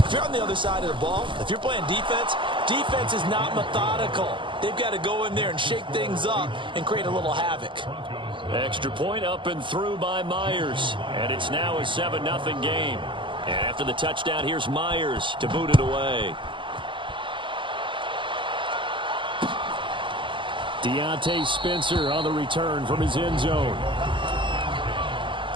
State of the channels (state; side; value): late; left; 0.24 ms